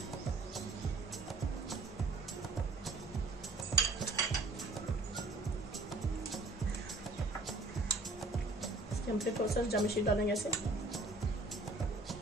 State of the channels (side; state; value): left; quieter; 3.1 dB